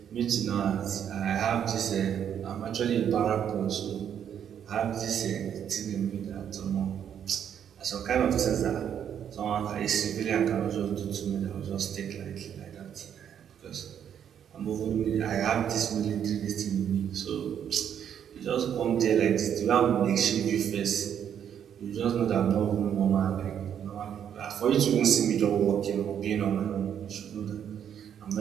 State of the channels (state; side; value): quieter; left; 8.9 dB